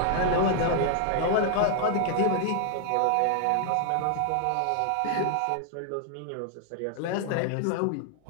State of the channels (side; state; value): both; different; correlation 0.00